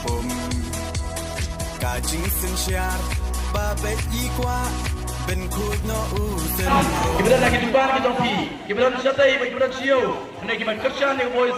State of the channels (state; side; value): identical; both; correlation 1.00